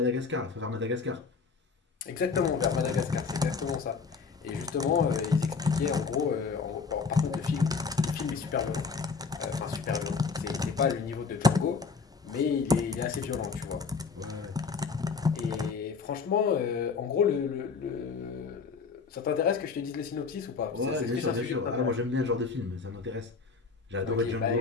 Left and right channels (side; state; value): right; quieter; 5.1 dB